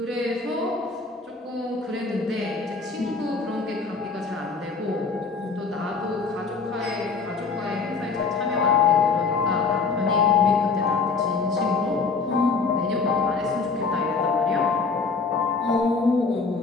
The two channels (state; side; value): quieter; right; 4.6 dB